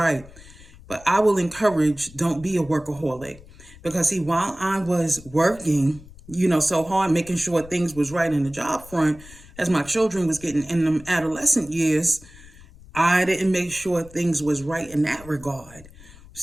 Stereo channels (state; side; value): noise; left; rumble, 21 dB below the sound